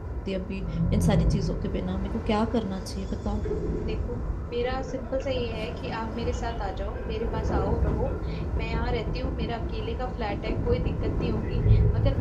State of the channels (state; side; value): identical; both; correlation 1.00